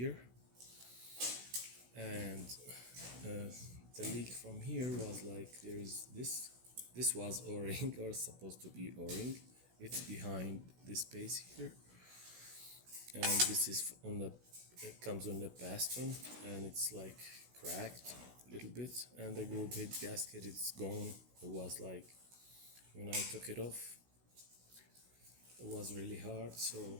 and the leak from here was like there is this. This was O-ring or supposed to be O-ring. It's behind this space here, and this is on the, it comes on the piston, and it's like cracked a little bit, and the group head gasket, it's gone. It was like when I took it off, it was really hard. So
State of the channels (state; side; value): late; left; 16 ms